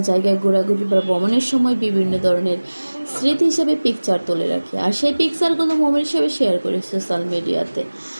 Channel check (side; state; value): both; inverted; correlation -1.00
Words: জায়গায় ঘোরাঘুরি বা ভ্রমণের সময় বিভিন্ন ধরনের স্মৃতি হিসেবে পিকচার তুলে রাখি, আর সেই পিকচারগুলো মোমেন্ট হিসেবে শেয়ার করি সোশ্যাল মিডিয়াতে।